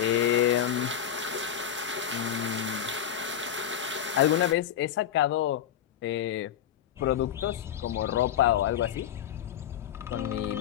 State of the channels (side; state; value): right; quieter; 9.8 dB